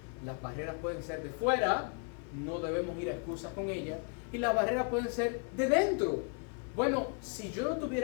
Las barreras pueden ser de fuera, no debemos ir a excusas con ellas, y las barreras pueden ser de dentro. Bueno, si yo no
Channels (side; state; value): right; quieter; 39.4 dB